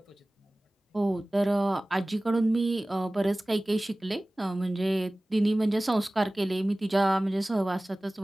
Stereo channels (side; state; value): both; normal; correlation 0.98